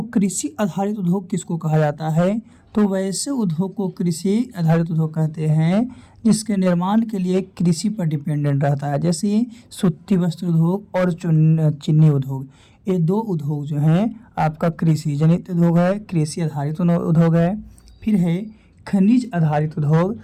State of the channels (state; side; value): identical; both; correlation 1.00